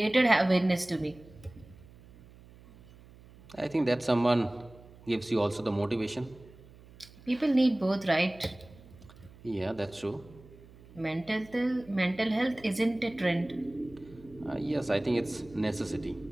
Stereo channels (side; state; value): right; noise; hum, 22 dB below the sound